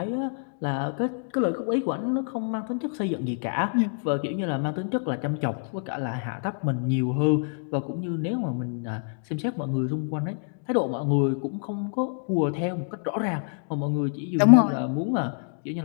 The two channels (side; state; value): right; silent; 60 dB below the other